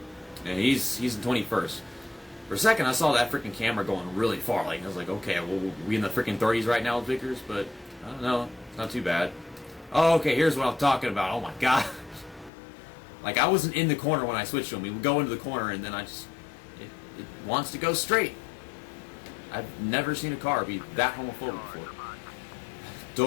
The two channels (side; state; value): right; drops out; at 12.5 s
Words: And he's in 21st. For a second, I saw that freaking camera going really far. Like, I was like, okay, well, we in the freaking 30s right now with Vickers, but I don't know. It's not too bad. Oh, okay, here's what I'm talking about. Oh, my God. Like, I wasn't in the corner when I switched to him. We would go into the corner, and then it wants to go straight. I've never seen a car be that homophobic before.